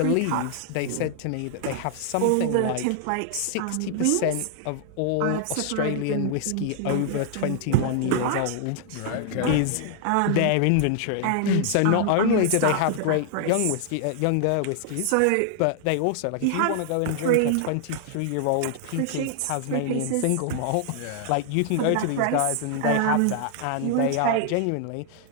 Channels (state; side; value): different; both; correlation -0.01